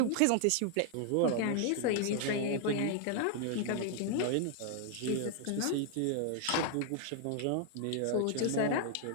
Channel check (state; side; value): different; both; correlation 0.00